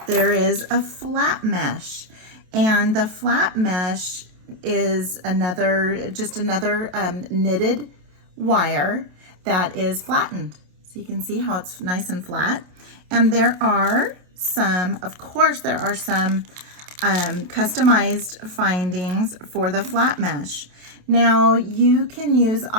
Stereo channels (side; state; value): left; late; 27 ms